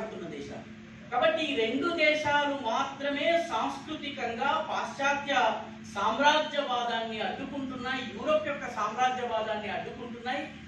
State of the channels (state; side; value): identical; both; correlation 1.00